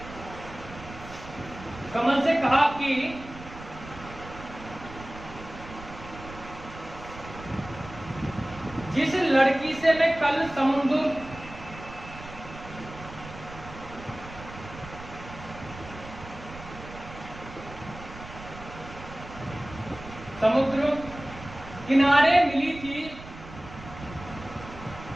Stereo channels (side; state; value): right; noise; rumble, 14 dB below the sound